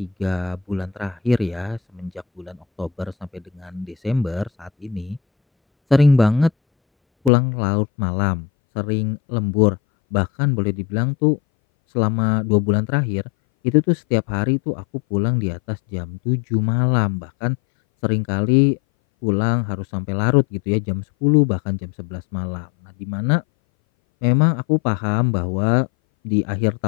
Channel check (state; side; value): drops out; right; at 7.3 s